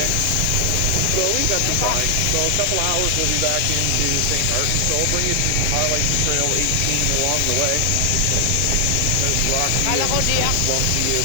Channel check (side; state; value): both; different; correlation 0.00